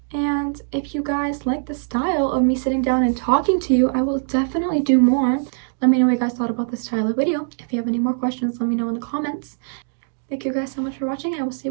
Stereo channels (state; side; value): silent; left; digital silence